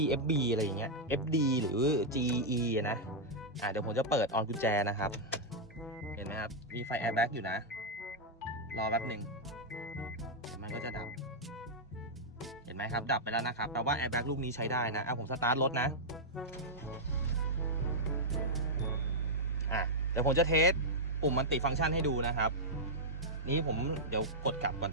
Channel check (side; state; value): both; normal; correlation -0.05